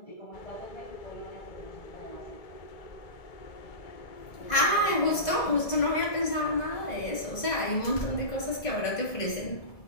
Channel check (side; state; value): right; late; 1.7 ms